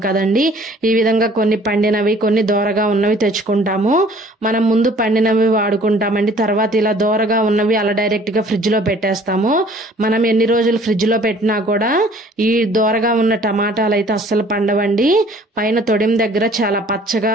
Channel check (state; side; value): normal; both; correlation 0.54